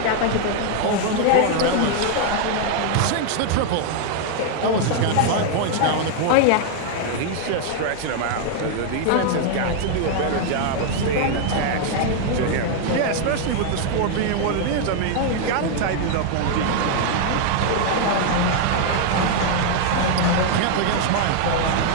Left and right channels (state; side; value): different; both; correlation 0.00